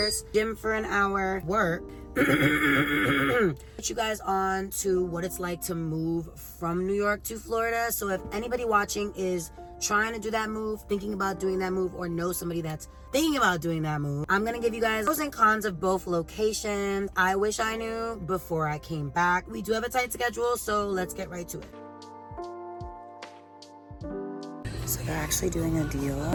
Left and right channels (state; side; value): identical; both; correlation 1.00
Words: Gym for an hour. Work. Put you guys on to what it's like to move from New York to Florida. So if anybody watching is trying to do that move, thinking about doing that move, or know somebody that's thinking about doing that move, I'm gonna give you guys pros and cons of both locations. I wish I knew before I came back. We do have a tight schedule, so let's get right to it. So they're actually doing a deal